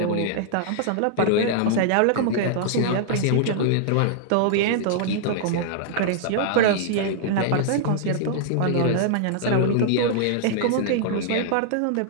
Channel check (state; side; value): different; both; correlation -0.01